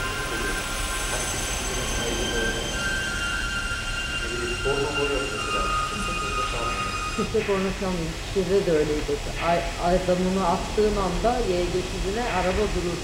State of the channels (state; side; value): identical; both; correlation 1.00